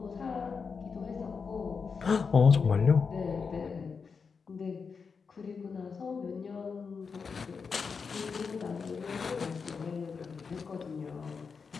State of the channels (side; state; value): right; quieter; 5.4 dB